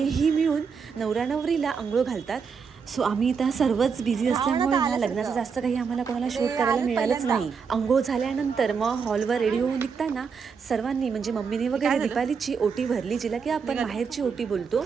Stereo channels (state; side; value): quieter; left; 5.9 dB